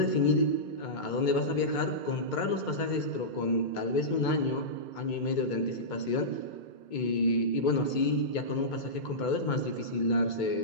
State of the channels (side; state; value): right; late; 2.2 ms